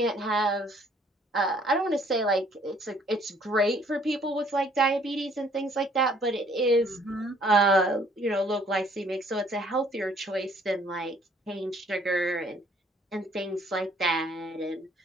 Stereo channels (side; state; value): both; normal; correlation 0.61